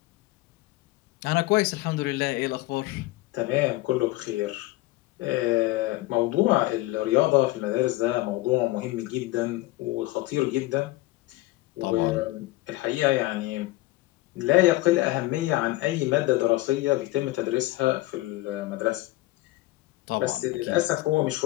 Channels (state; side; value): quieter; right; 18.5 dB